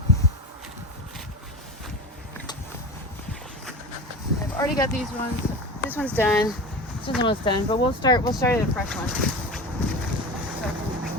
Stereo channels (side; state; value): both; normal; correlation 0.29